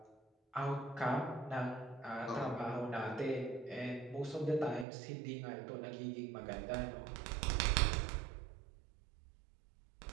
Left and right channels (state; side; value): drops out; left; at 4.9 s